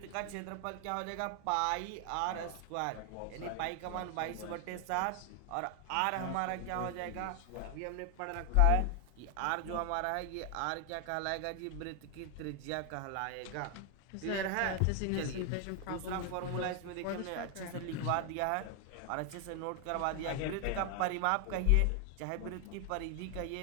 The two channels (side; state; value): both; different; correlation 0.00